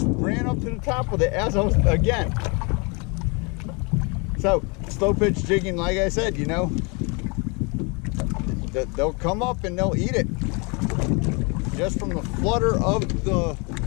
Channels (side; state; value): right; quieter; 31.2 dB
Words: ran up to the top with it as I was, again. So, slow pitch jigging, like I said, they'll come up and they'll eat it. Just from the flutter of the